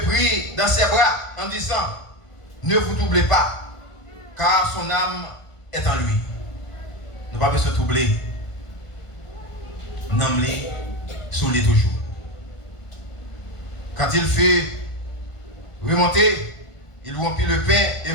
prit dans ses bras en disant, ne vous troublez pas, car son âme est en lui. Nous pas besoin de troubler. N'emmener sous les toujours. Quand il fut remonté, il rompit le pain et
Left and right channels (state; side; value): late; right; 1.5 ms